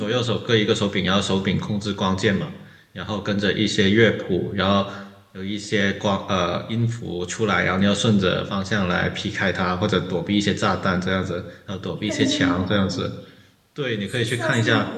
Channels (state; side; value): identical; both; correlation 1.00